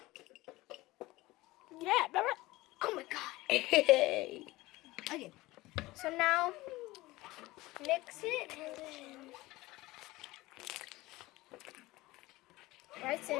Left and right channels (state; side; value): quieter; right; 19.5 dB